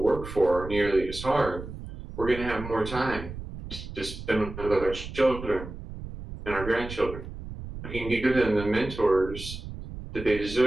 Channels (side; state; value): right; noise; rumble, 10 dB below the sound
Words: for nearly as hard, we're going to have more time to spend with our children and our grandchildren. We can give them the mentors that they